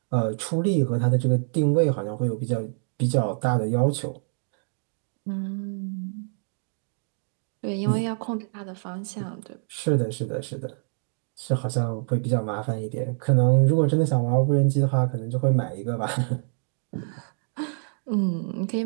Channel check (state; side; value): silent; left; 61 dB below the other